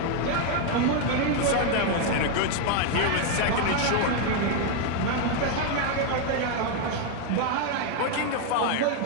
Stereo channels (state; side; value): different; both; correlation 0.01